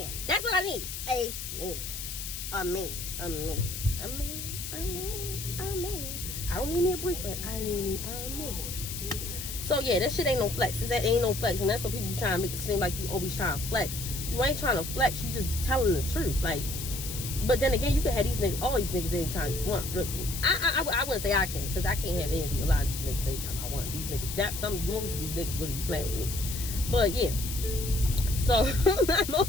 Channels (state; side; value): noise; left; hiss, 7 dB below the sound